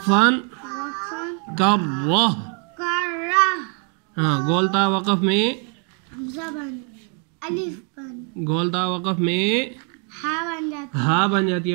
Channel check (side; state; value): left; quieter; 39.0 dB